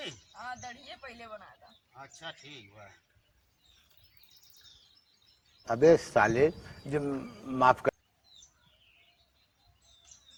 हाँ दड़िए पहले बनाया था। अच्छा ठीक बा। अबे साले जो माफ कर।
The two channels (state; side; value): identical; both; correlation 1.00